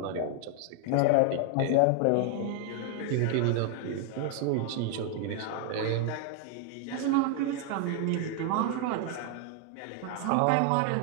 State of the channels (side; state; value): both; different; correlation 0.00